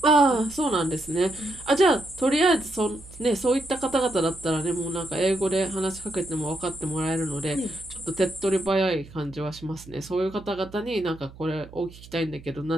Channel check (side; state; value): right; noise; hum, 19 dB below the sound